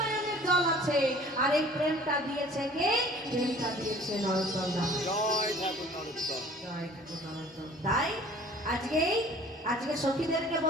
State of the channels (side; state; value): both; normal; correlation 0.49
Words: জল আছে। আর এই প্রেমটা দিয়েছে কে? প্রেমটা দিয়েছে নরোত্তম দাস। জয় ঠাকুর নরোত্তম, জয় ঠাকুর নরোত্তম। তাই আজকে সখীদেরকে